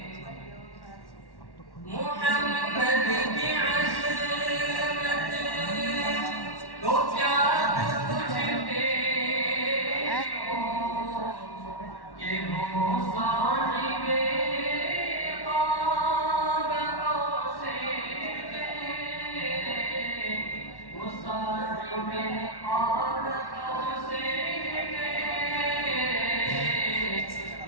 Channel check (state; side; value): late; right; 1.1 ms